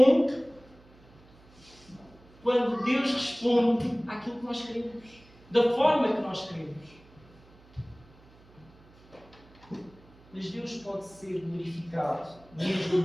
quando Deus responde àquilo que nós queremos, da forma que nós queremos. Mas Deus pode ser glorificado, mesmo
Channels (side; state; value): right; noise; hum, 26 dB below the sound